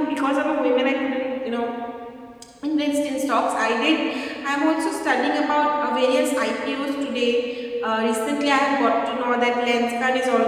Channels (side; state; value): both; identical; correlation 1.00